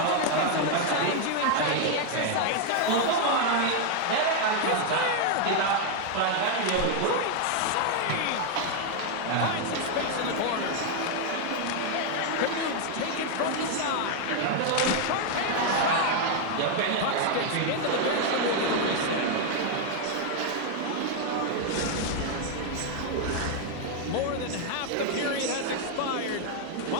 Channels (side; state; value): both; different; correlation 0.00